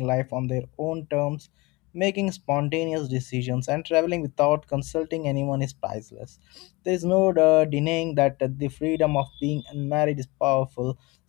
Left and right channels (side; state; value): right; quieter; 24.1 dB